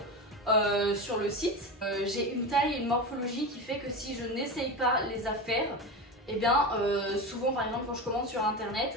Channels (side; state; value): both; normal; correlation 0.23